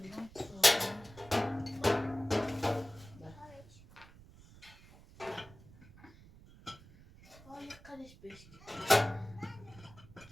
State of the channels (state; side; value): noise; right; rumble, 21 dB below the sound